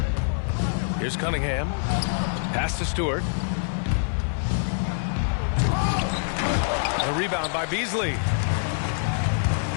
Here's Cunningham. Pass to Stewart. The rebound by Beasley.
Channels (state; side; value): silent; right; digital silence